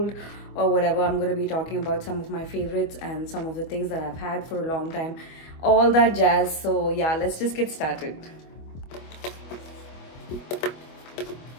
or whatever. I'm going to be talking about some of my favorites and some of the things that I've had for a long time, all that jazz. So yeah, let's just get started.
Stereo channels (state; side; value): late; right; 25 ms